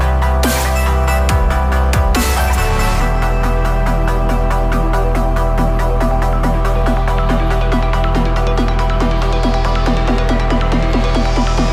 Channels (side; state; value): both; identical; correlation 1.00